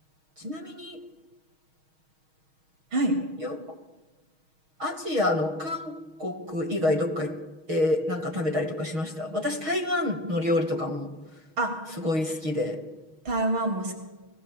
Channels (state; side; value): late; left; 6.4 ms